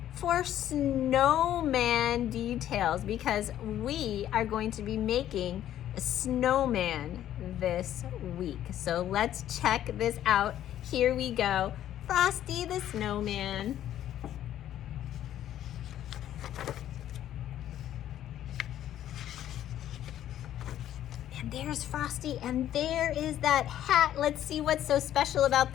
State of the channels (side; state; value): right; quieter; 11.7 dB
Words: for snowman details because we are going to be making a snowman this week. So let's check this out. Here we go. Frosty the Snowman. And there's Frosty, and there is that hat. Let's see what's so special about